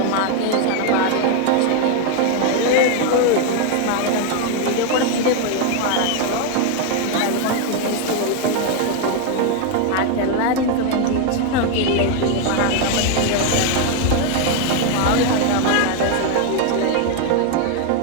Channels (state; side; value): different; both; correlation 0.01